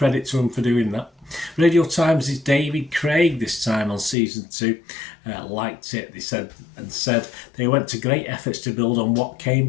to them for doing that. Radio Times' David Craig this time on season 2 liked it. They said they went to great efforts to build on what came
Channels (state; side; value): drops out; right; at 4.2 s